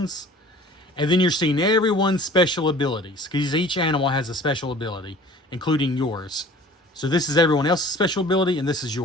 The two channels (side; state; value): both; normal; correlation 0.47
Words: And then you're seeing everyone's special abilities, because each animal has a special ability, including yours. So this is everyone else's special ability, and this is